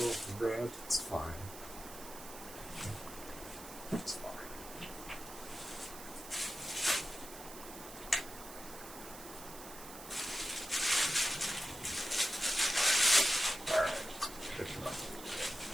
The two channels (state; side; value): noise; right; hiss, 13 dB below the sound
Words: of bread. It's fine. It's fine.